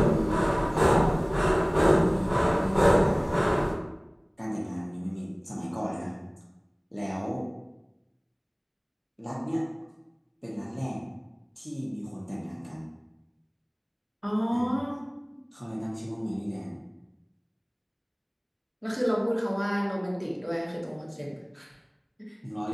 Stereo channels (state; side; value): identical; both; correlation 1.00